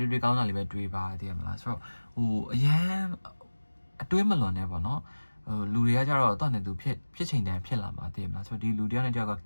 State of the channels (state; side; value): inverted; both; correlation -1.00